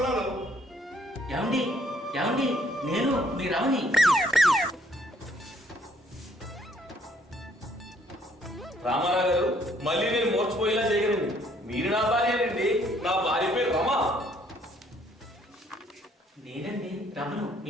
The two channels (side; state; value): both; normal; correlation 0.65